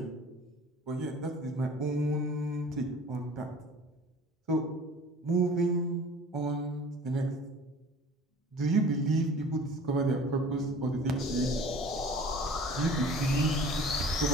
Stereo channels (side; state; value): both; normal; correlation 0.46